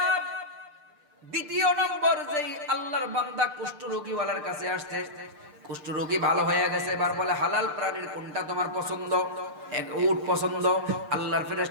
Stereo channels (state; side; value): late; left; 6.7 ms